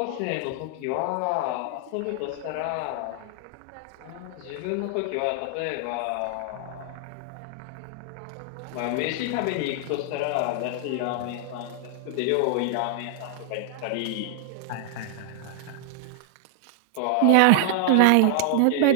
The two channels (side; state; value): both; different; correlation -0.01